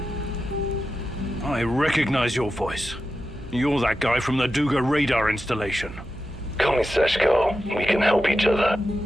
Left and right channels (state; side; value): noise; right; hum, 15 dB below the sound